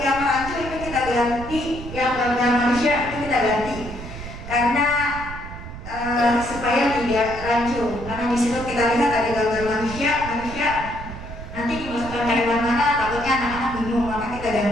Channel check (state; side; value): noise; right; rumble, 11 dB below the sound